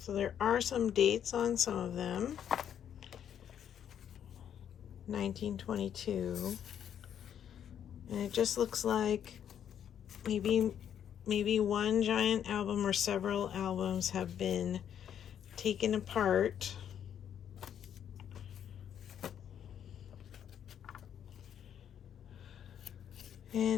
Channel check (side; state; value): right; quieter; 9.3 dB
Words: there are some dates on some of them. 1922. And it just looks like maybe one giant album or several albums have been taken apart.